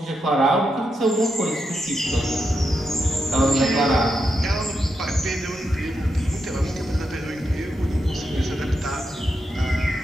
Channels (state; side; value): normal; both; correlation 0.84